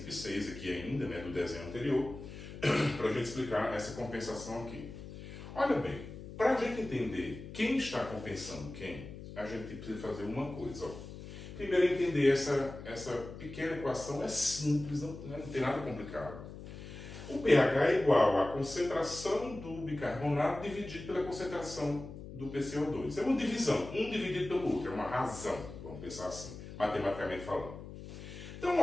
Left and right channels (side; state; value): left; noise; hum, 12 dB below the sound